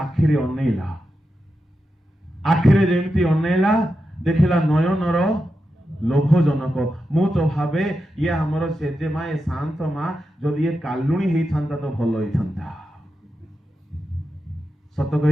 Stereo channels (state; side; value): normal; both; correlation 0.88